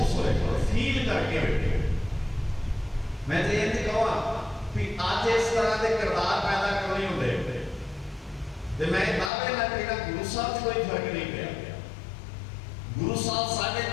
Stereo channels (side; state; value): right; drops out; at 9.3 s